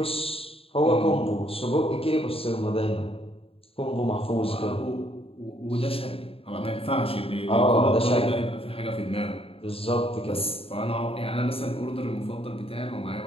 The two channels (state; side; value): late; right; 0.27 ms